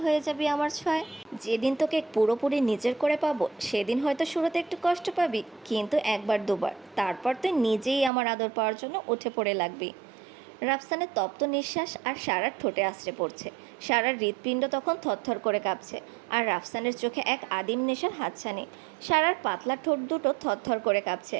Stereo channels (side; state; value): left; drops out; at 8.1 s